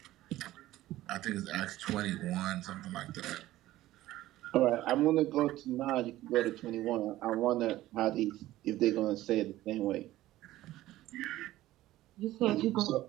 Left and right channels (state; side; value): quieter; left; 15.6 dB